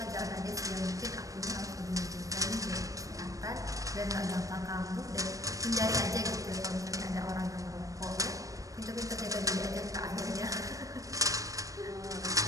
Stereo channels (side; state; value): left; late; 0.16 ms